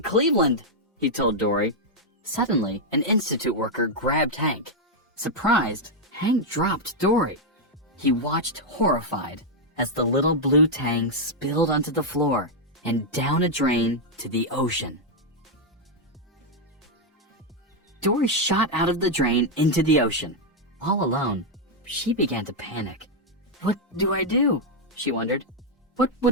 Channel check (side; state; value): both; normal; correlation -0.01